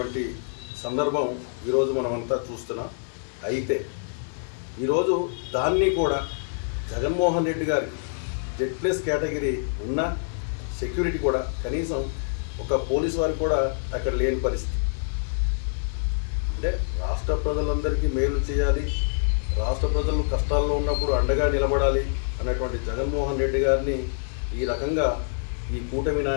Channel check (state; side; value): silent; right; 61 dB below the other